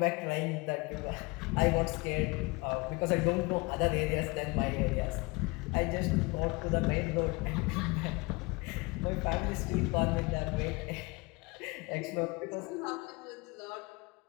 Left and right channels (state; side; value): quieter; right; 26.0 dB